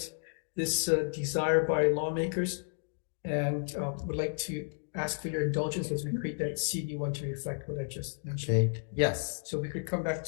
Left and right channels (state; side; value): silent; right; digital silence